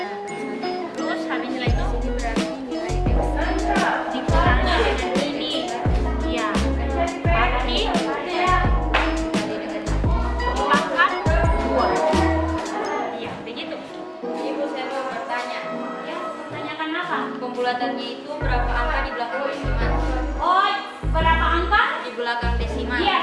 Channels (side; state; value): both; identical; correlation 1.00